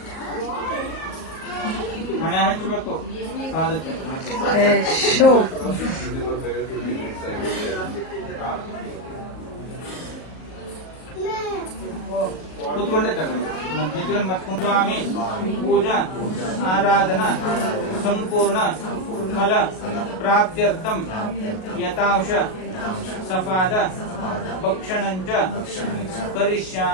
ಹಣೆ ಹಚ್ಚಬೇಕು ಪಾದಕ್ಕೆ ಕೂತ್ಕೊಂಡೆ ತಗೊಳ್ಳಿ ಮತ್ತೆ ಸ್ವಾಮಿ ಪೂಜಾ ಆರಾಧನಾ ಸಂಪೂರ್ಣ ಫಲ ಪ್ರಾಪ್ತ್ಯರ್ಥಂ ಯಥಾಂಶ ಸಫಾದ ಭಕ್ಷಣಂಚ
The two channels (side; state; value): right; late; 38 ms